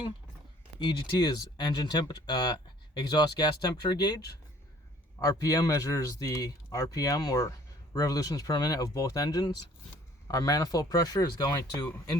EGT is engine temperature, exhaust gas temperature gauge. RPM measures the RPM or revolutions per minute of both engines. Our manifold pressure is going to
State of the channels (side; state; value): both; normal; correlation 0.56